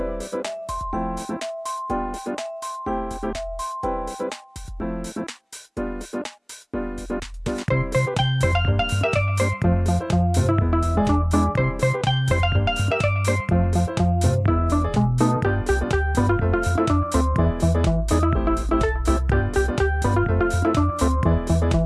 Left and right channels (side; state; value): both; identical; correlation 1.00